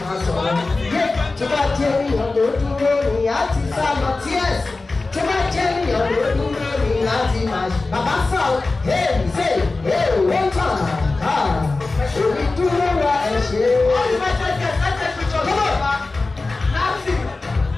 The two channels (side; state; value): right; quieter; 3.5 dB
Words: máa sọ̀rọ̀. Tó bá jẹ́ ènìyàn ló dúró ní àti sálọ tíẹ̀s. Tó bá jẹ́ ènìyàn ló dúró ní àti máa ṣe. Bàbá sọ èmi ṣe wọ́n tàn á. Èmi dúró wa ẹ̀ ṣe.